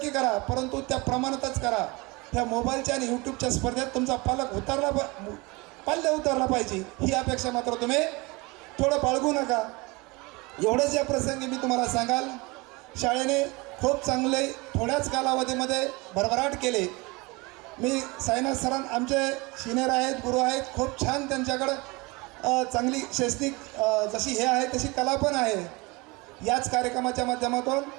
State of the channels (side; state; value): left; quieter; 25.2 dB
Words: करा, परंतु त्या प्रमाणातच करा. त्या मोबाईलच्या आणि यूट्यूबच्या स्पर्धेत तुमचा पालक पाल्य उतरला पाहिजे, ही अपेक्षा मात्र तुम्ही थोडं बाळगू नका. एवढंच या प्रसंगी मी तुम्हाला सांगाल, शाळेने खूप चांगले थोड्याच कालावधीमध्ये भरभराट केले. मी साईनाथ सरां आमचे सिनियर आहेत, गुरु आहेत, खूप छान त्यांच्याकडं चांगली शैक्षणिक जशी हे आहे तशी कला पण आहे. याच कार्यक्रमाच्या माध्यमातून